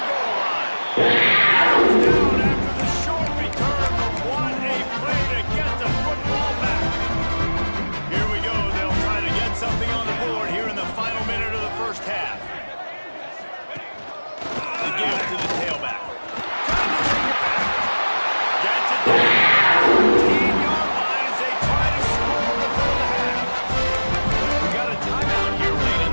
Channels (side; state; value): both; inverted; correlation -1.00